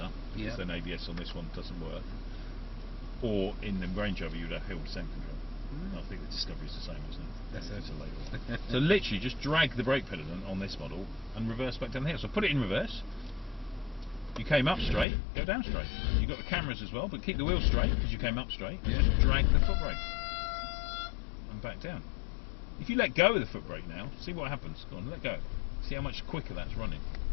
because then ABS on this one doesn't work, or in the Range Rover you'd have hill descent control. I think the Discovery is the same, isn't it? That's it. It's a later one. So literally just drag the brake pedal on this model and reverse back down the hill. So put it in reverse. You came up straight, go down straight. You've got the cameras as well, but keep the wheel straight because you came up straight. Yeah. Just drag the foot brake and back down. If you let go of the foot brake now, see what happens. Go on, let go. See how much quicker that's running.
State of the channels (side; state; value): right; drops out; at 15.1 s